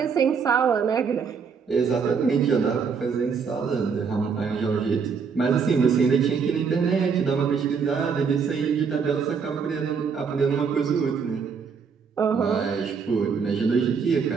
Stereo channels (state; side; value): quieter; left; 5.9 dB